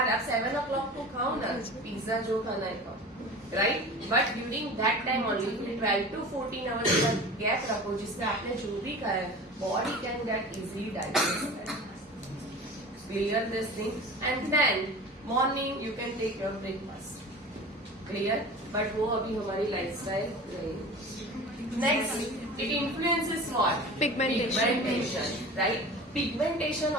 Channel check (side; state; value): both; normal; correlation 0.36